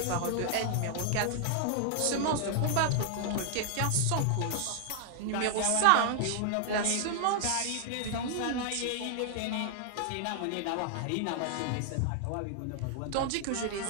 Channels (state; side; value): different; both; correlation 0.00